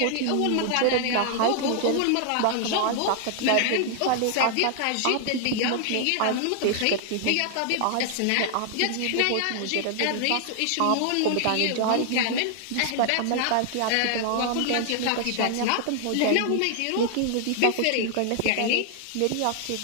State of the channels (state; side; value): different; both; correlation 0.00